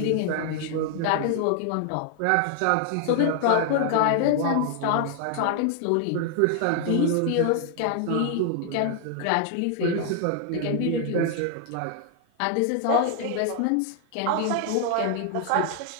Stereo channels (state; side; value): different; both; correlation 0.00